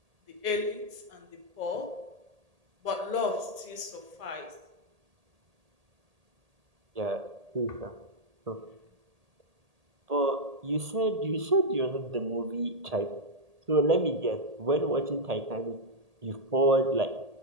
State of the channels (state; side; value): late; left; 1.8 ms